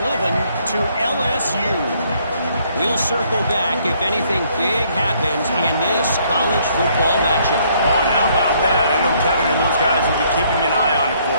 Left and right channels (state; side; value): inverted; both; correlation -0.66